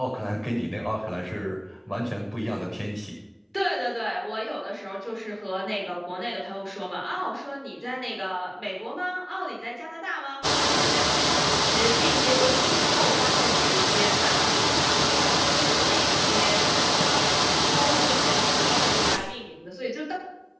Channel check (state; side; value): identical; both; correlation 1.00